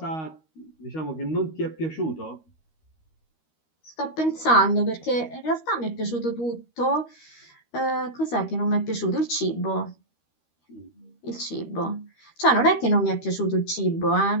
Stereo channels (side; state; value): right; late; 13 ms